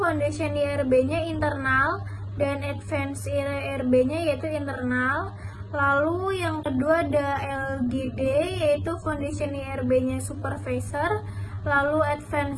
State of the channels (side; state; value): both; identical; correlation 1.00